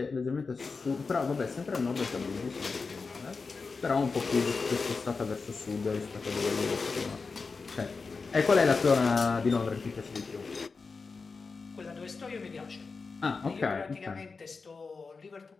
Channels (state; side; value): quieter; right; 4.5 dB